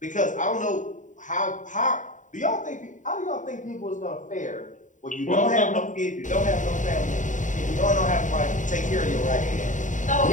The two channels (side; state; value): right; late; 0.36 ms